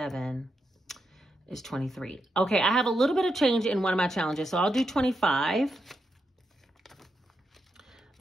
is 23. Okay, I have a little bit of change in one of my challenges, so I'll do 25.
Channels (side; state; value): both; normal; correlation 0.84